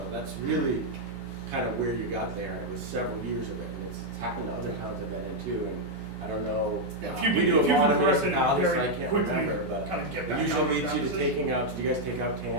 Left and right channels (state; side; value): normal; both; correlation -0.01